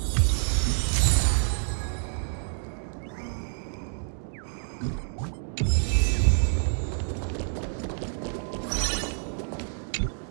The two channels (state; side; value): silent; left; digital silence